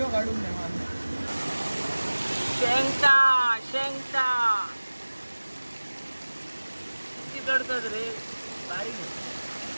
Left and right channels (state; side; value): inverted; both; correlation -1.00